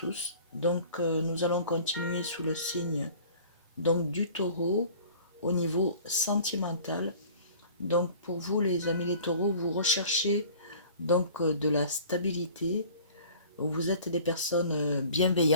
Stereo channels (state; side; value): inverted; both; correlation -0.47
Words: Donc nous allons continuer sous le signe donc du taureau au niveau sentimental. Donc pour vous les amis les taureaux, vous recherchez donc de la stabilité. Vous êtes des personnes